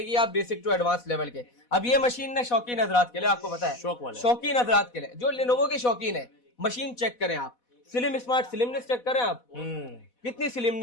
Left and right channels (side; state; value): right; late; 4.1 ms